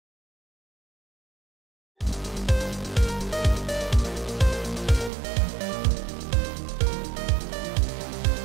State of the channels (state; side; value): drops out; left; at 5.1 s